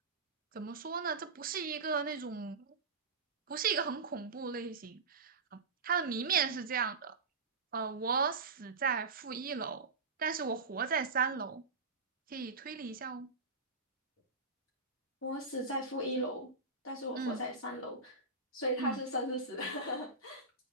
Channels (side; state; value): left; quieter; 4.1 dB